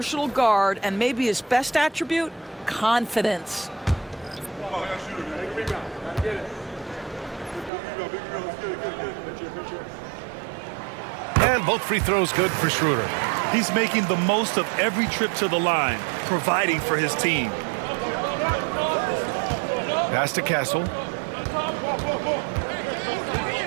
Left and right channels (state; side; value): drops out; left; at 7.7 s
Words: guard, and maybe his best attribute, confidence. And both free throws good for Schroeder. He's making the most of every trip to the line, providing for his team. Pass to Castle.